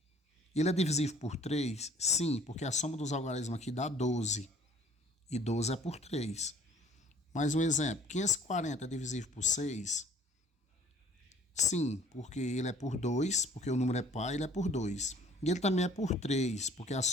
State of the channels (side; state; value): both; normal; correlation 0.55